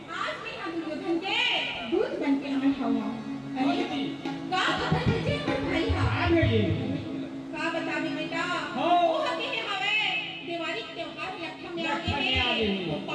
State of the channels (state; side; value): identical; both; correlation 1.00